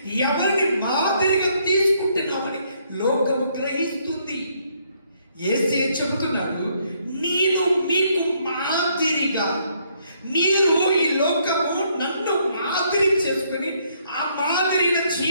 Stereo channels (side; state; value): both; inverted; correlation -0.70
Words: ఎవరిని మాదిరిగా తీసుకుంటున్నావని లోకము గ్రహిస్తుంది. యేసే చెబుతున్నాడు, నేను మీకు మాదిరిగా, మీరు ఈ లోకము నన్ను మాదిరి చేసుకుని ఆ మాదిరిన